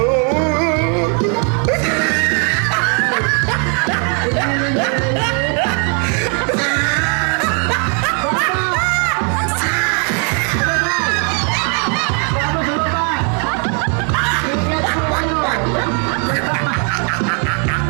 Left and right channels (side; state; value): left; quieter; 39.5 dB